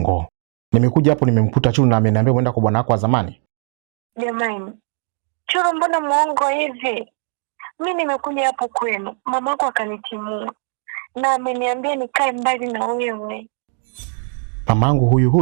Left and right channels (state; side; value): silent; left; 56 dB below the other